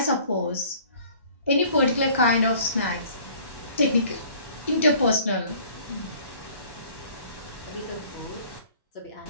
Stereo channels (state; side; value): inverted; both; correlation -0.53